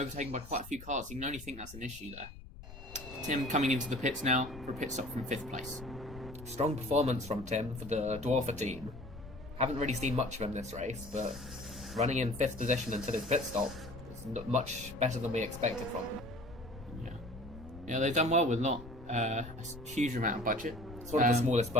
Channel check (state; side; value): noise; left; rumble, 15 dB below the sound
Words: by quite a few cars. You can only think that's an issue there. Tim coming into the pits now for a pit stop from 5th place. Strong performance from Tim for the Dwarfer team. Haven't really seen much of him this race, but running in 5th position until his pit stop is much better than we expected from him. Yeah, yeah, they've done well with not a huge amount of budget. It's one of the smallest